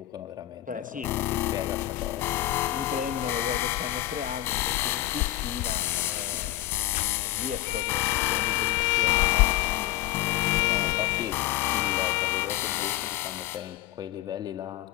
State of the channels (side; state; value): right; quieter; 14.9 dB